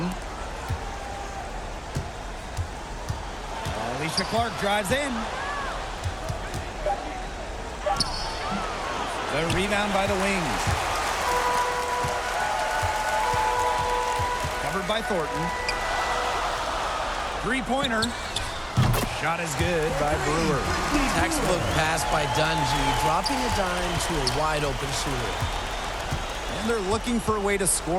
Alicia Clark drives in. The rebound by the Wings. Covered by Thornton. Three-pointer. Shot is good by Brewer. Textbook pass by Dungy, dropping a dime to a wide-open shooter. And they're looking for a way to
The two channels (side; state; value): both; identical; correlation 1.00